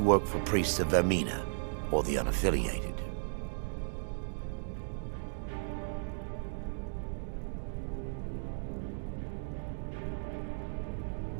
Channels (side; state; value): left; silent; digital silence